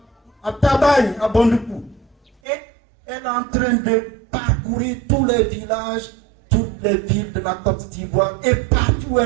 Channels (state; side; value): drops out; left; at 2.3 s